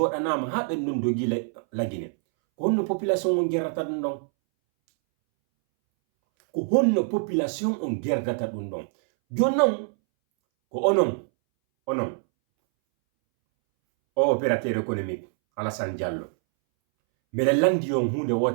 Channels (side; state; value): left; silent; 62 dB below the other